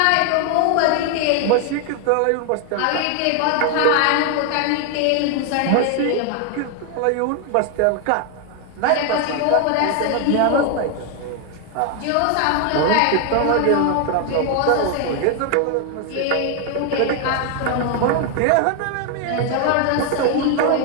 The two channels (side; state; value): both; different; correlation 0.00